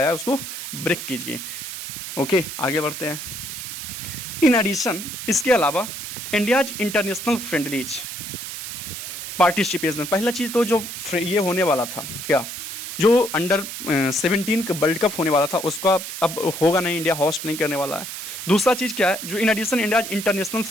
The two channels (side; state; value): right; noise; hiss, 8 dB below the sound